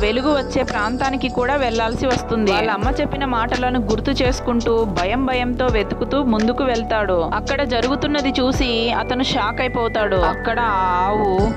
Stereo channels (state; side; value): identical; both; correlation 1.00